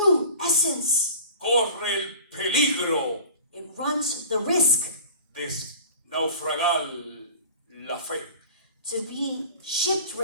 essence, corre el peligro it runs the risk de naufragar la fe. to be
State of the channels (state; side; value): inverted; both; correlation -0.41